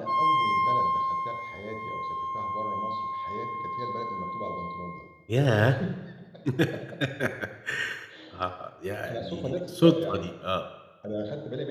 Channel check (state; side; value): identical; both; correlation 1.00